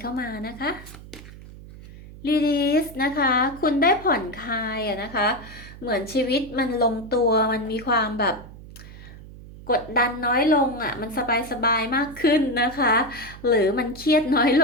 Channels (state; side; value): noise; right; hum, 17 dB below the sound